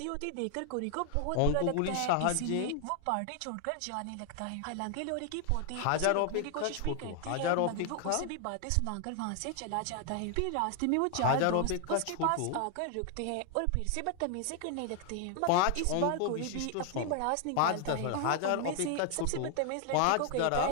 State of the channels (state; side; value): different; both; correlation 0.00